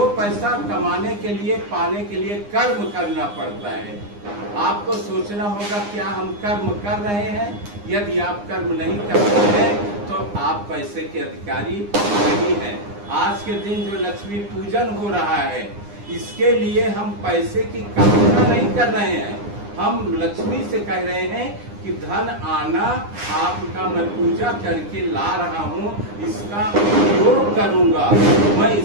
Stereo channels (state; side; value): late; left; 9.8 ms